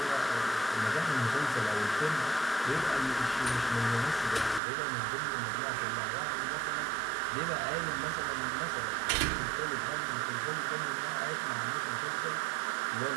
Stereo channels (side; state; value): left; drops out; at 4.6 s